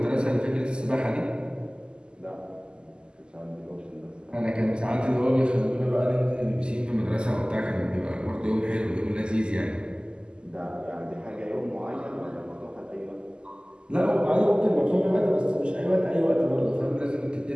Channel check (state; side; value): late; left; 0.048 ms